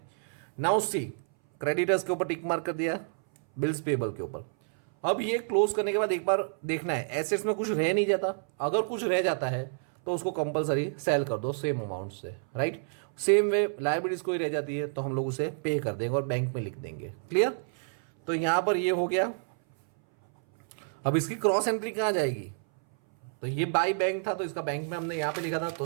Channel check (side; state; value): left; silent; 59 dB below the other